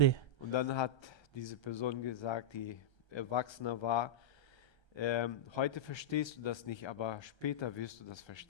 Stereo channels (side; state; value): right; late; 1.3 ms